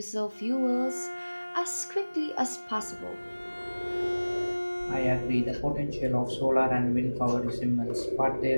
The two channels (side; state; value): both; inverted; correlation -1.00